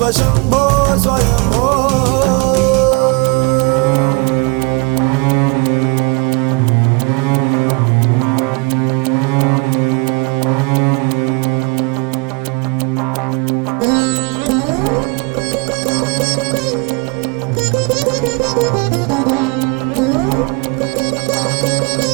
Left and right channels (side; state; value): left; quieter; 31.0 dB